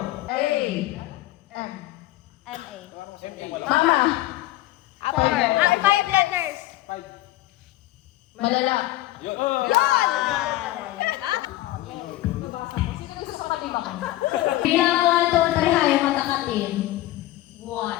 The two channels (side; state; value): right; quieter; 16.4 dB